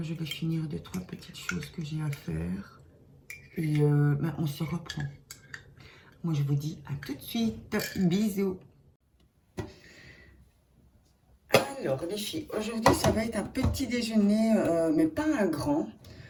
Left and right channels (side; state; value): both; identical; correlation 1.00